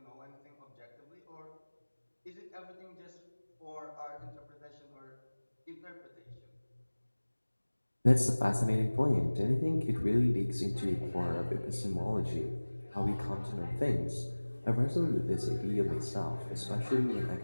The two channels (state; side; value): inverted; both; correlation -1.00